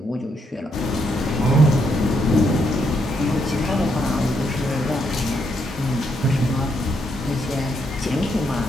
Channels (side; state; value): both; normal; correlation 0.77